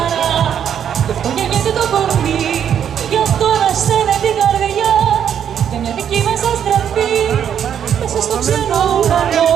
γι' αυτό γεννιέται το κορμί, γι' αυτό ανασταίνεται την καρδιά, για μια δική μας αστραφή μέσα στο ξένο ουρανό,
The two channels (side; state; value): left; quieter; 8.9 dB